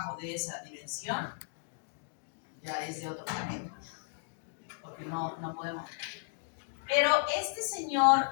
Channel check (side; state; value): right; silent; digital silence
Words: de esa dimensión ya es de otro planeta. Porque no podemos. Pero este